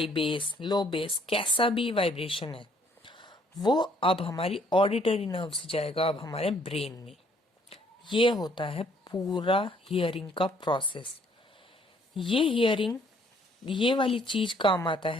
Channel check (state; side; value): normal; both; correlation 0.64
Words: bass, low bass, कैसा भी वाइब्रेशन है, वो अब हमारी ऑडिटरी नर्व से जाएगा अब हमारे ब्रेन में। ये होता है पूरा हियरिंग का प्रोसेस। ये हियरिंग, ये वाली चीज काम आता